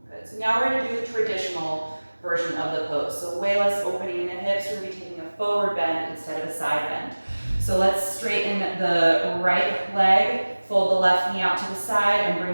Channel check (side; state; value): both; inverted; correlation -1.00